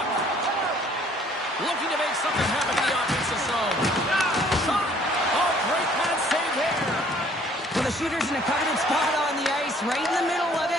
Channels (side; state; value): both; normal; correlation 0.58